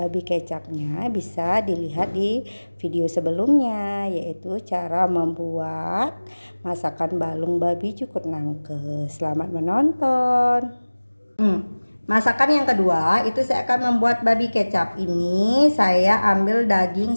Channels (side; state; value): both; inverted; correlation -1.00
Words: kecapnya bisa dilihat di video sebelumnya, yaitu cara membuat masakan balung babi cukur nangke. Selamat menonton. Masakan yang kedua itu saya akan membuat babi kecap. Ini saya ambil daging